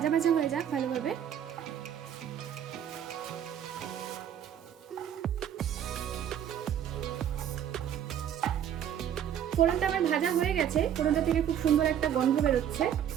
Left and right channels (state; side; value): quieter; left; 9.6 dB